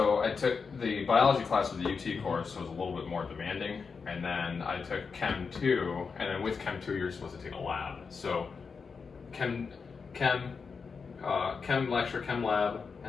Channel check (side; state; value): right; quieter; 5.3 dB